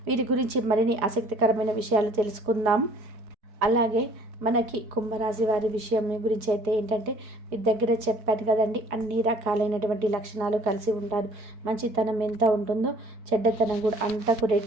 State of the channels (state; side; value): late; left; 4.8 ms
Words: వీరి గురించి మరిన్ని ఆసక్తికరమైన విషయాలు తెలుసుకుందాం. అలాగే మనకి కుంభరాశి వారి విషయం గురించి అయితే ఏంటంటే మీ దగ్గర చెప్పాను కదండి, అన్ని రకాలైనటువంటి లక్షణాలు కలిసి ఉంటారు. మంచితనం ఎంత ఉంటుందో చెడ్డతనం కూడా అంతకు